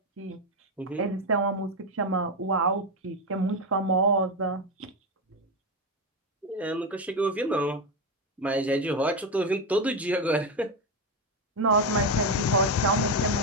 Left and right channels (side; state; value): both; normal; correlation 0.11